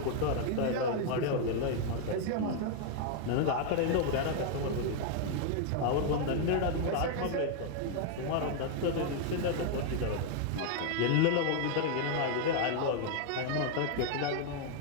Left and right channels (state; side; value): different; both; correlation 0.00